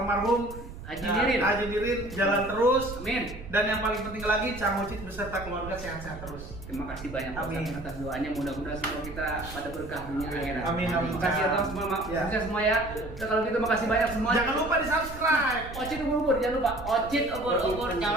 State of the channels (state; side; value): noise; right; rumble, 12 dB below the sound